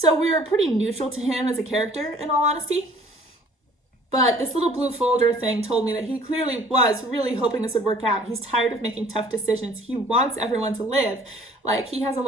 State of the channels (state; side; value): normal; both; correlation 0.54